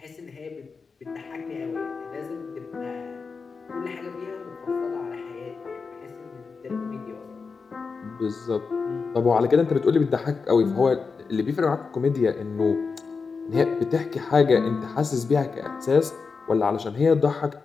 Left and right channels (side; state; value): right; quieter; 4.9 dB